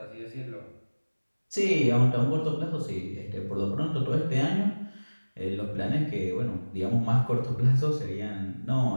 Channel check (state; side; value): inverted; both; correlation -1.00